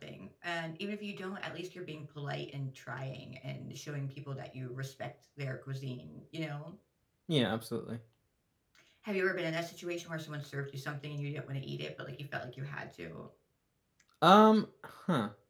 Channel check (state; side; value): identical; both; correlation 1.00